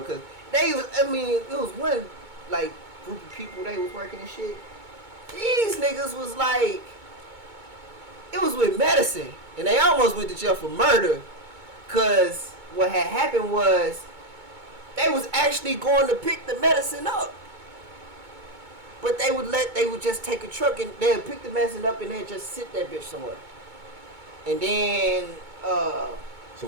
Cause it was one like group of people they was working and shit. These niggas was like, it was with medicine, and they almost went to jail for murder. Cause what had happened was, they was actually going to pick the medicine up. But they would just take a truck and they'd pick the medicine up and they'd just sit that bitch somewhere. And then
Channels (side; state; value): left; late; 2.2 ms